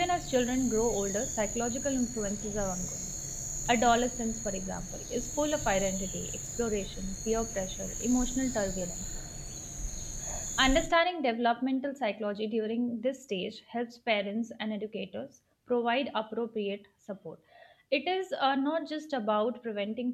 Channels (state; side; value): identical; both; correlation 1.00